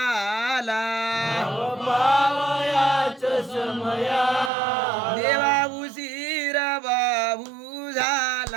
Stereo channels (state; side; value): drops out; left; at 4.5 s